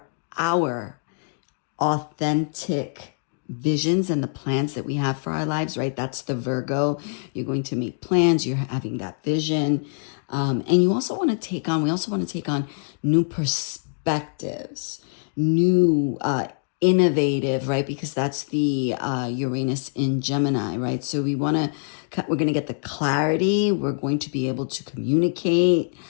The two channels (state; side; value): silent; right; digital silence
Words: authentic visions and the plans that we have for our lives, right? That's the Virgo. You're going to make plans. You're having that vision. And we also want to take on new perspectives, new, innovative, right? Because that's the Uranus in Gemini, right? So we're going to get the clarity. We're going to be able to communicate